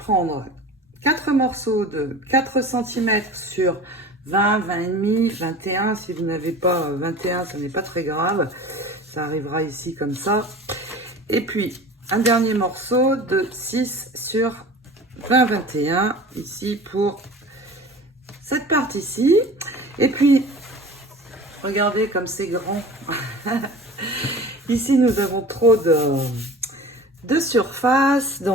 4 morceaux de 4 cm sur 20, 20,5, 21. Si vous n'avez pas 21, ce n'est pas très grave. Ça arrivera ici comme ça. Et puis, un dernier morceau de 6 sur 20, 21, ici pour cette partie-ci. Et puis, regardez comme c'est grand. Ici, nous avons trop de surface.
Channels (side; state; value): both; normal; correlation 0.39